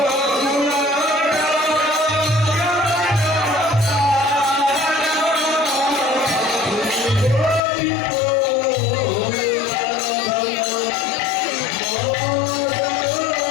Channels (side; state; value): right; drops out; at 7.6 s